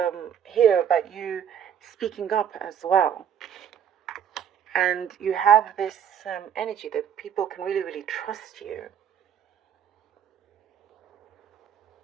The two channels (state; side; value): quieter; left; 8.7 dB